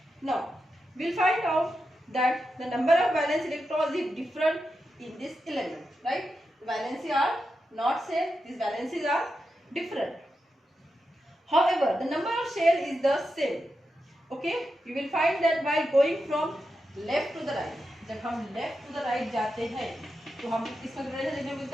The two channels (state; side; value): normal; both; correlation 0.88